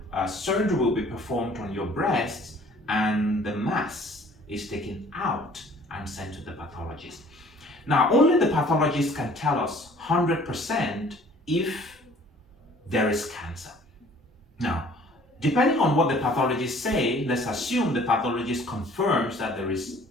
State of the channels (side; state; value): both; normal; correlation 0.53